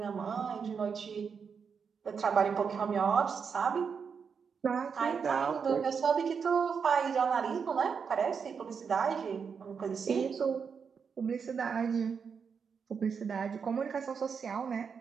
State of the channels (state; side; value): quieter; left; 6.2 dB